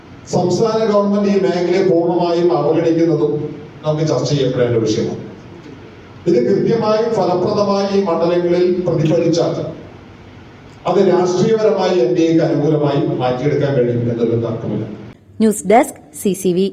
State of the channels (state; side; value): identical; both; correlation 1.00